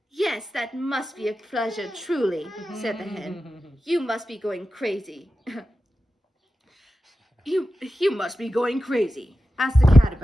"Yes, that must be a pleasure, truly," said the hen. "You must be going crazy." You must be going crazy. Ask the cat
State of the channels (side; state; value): both; normal; correlation 0.92